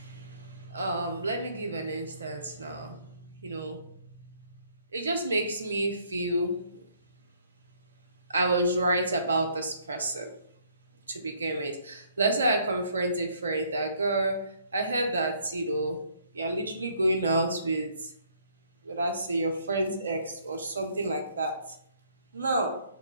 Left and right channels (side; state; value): both; inverted; correlation -0.65